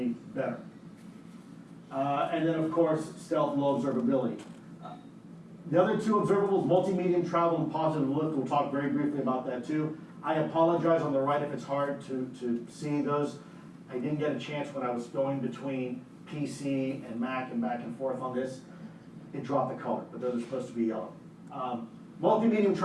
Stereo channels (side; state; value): both; identical; correlation 1.00